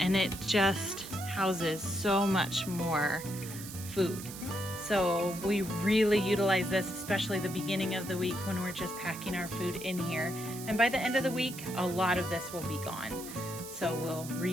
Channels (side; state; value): right; noise; hiss, 12 dB below the sound